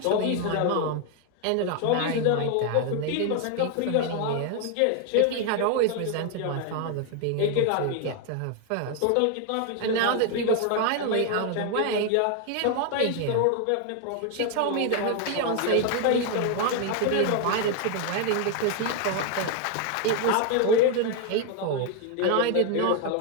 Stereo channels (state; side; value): different; both; correlation 0.01